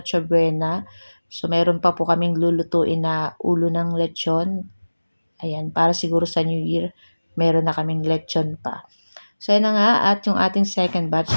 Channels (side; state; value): both; inverted; correlation -1.00